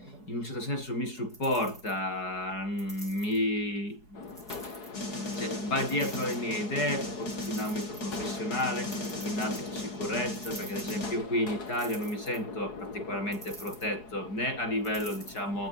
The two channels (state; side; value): late; right; 4.7 ms